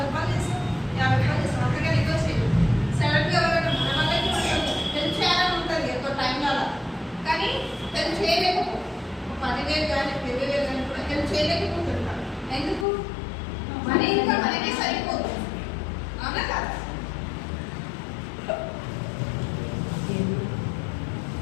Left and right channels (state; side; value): drops out; right; at 12.9 s